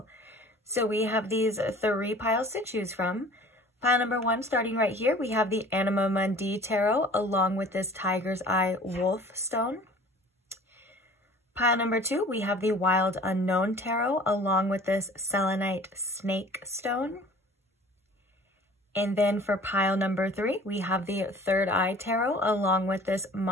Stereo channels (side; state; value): both; normal; correlation 0.47